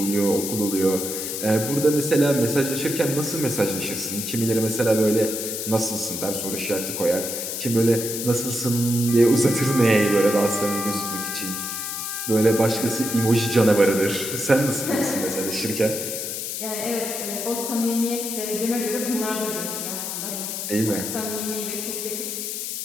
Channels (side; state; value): left; noise; hiss, 4 dB below the sound